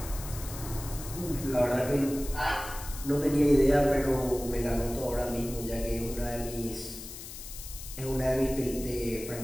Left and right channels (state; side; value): noise; left; hiss, 12 dB below the sound